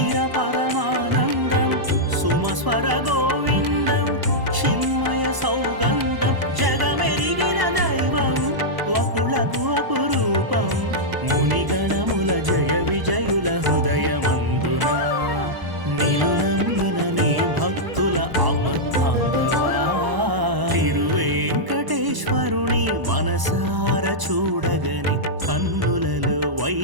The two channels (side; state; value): left; late; 1.0 ms